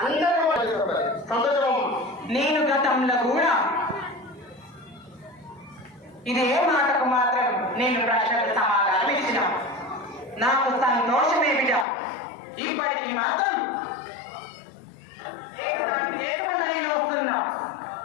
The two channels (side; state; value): right; drops out; at 11.9 s